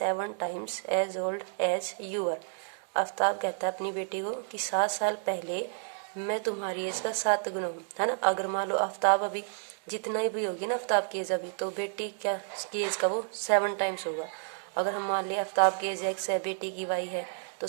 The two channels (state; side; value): silent; left; 57 dB below the other